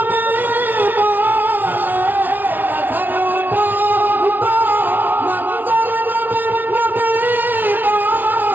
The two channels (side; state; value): left; late; 0.087 ms